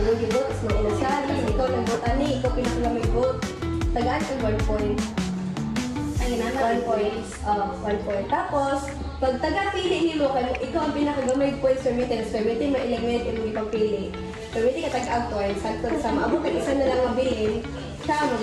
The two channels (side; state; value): both; identical; correlation 1.00